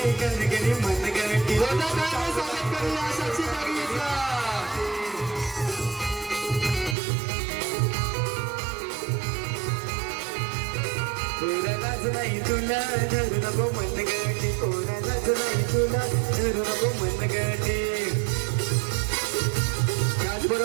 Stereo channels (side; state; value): left; drops out; at 7.0 s